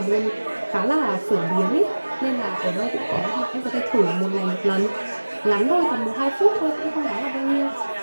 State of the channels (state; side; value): inverted; both; correlation -1.00